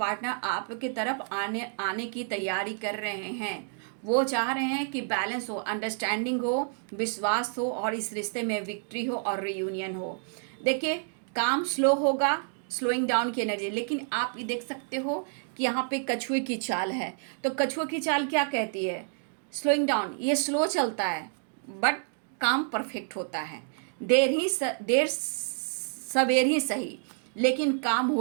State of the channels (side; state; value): left; silent; 58 dB below the other